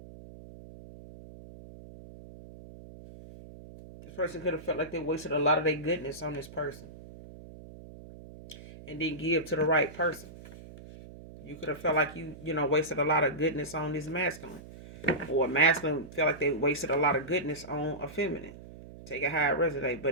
This person could have felt like they wasted a lot of their goodness on this person and didn't give to the right person. You could have felt like you wasted a lot of goodness on this masculine. Or a masculine felt like they wasted a lot of goodness on a feminine. Take it how it resonate.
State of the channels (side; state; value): right; noise; hum, 16 dB below the sound